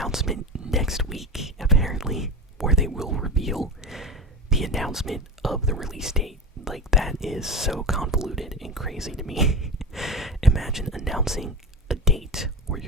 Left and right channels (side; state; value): both; normal; correlation 0.25